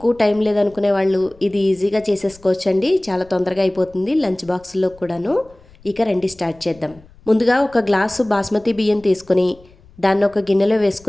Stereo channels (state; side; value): noise; left; rumble, 26 dB below the sound